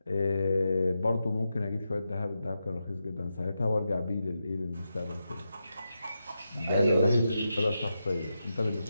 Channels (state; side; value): inverted; both; correlation -0.87